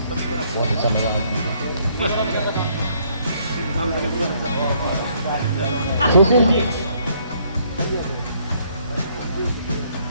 बहुत अच्छा लगा मुझे।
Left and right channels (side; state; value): both; inverted; correlation -0.67